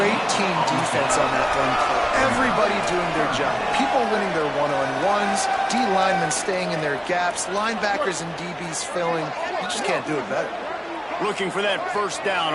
team defense on that run play. Everybody doing their job. People winning their one-on-ones, D linemen staying in their gaps, linebackers and DBs filling. You just can't do it better. Looking for that 1st down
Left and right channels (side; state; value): both; identical; correlation 1.00